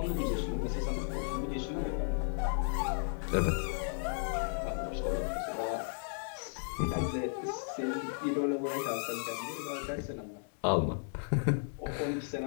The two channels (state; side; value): silent; right; 55 dB below the other